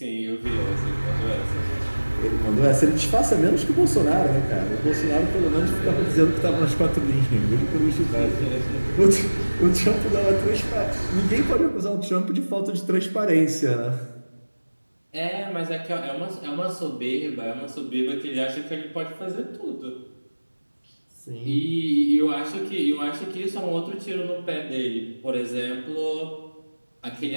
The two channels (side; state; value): both; inverted; correlation -1.00